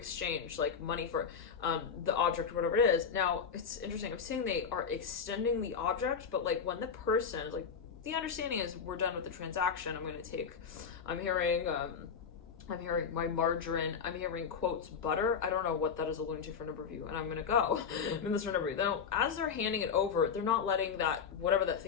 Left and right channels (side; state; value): right; quieter; 6.4 dB